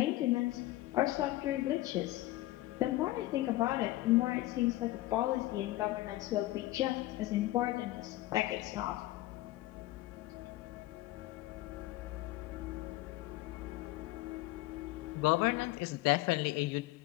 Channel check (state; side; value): quieter; right; 17.3 dB